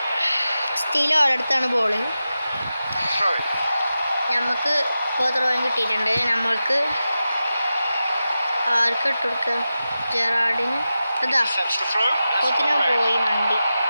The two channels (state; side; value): inverted; both; correlation -0.93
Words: സ്റ്റീൽ ഓരോടത്താണ് ball. Throwing. നമുക്ക് ഇപ്പോൾ ത്രോയും കിട്ടിയിട്ടുണ്ട്. നമ്മൾക്ക് ആർക്ക് ഇട്ട് കൊടുക്കുക? ജെറാഡിന്. അതാ Sets the throw. That's കൊത്തിന for red. പോയി മണ്ടി.